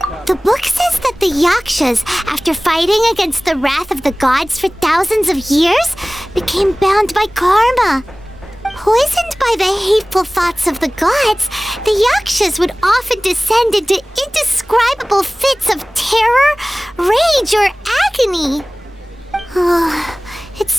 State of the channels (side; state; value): both; normal; correlation 0.98